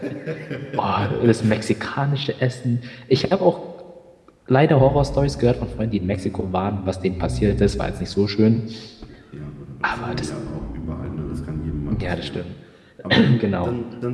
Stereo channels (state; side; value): identical; both; correlation 1.00